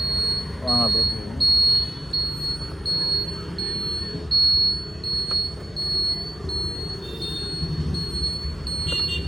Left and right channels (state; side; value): normal; both; correlation 0.96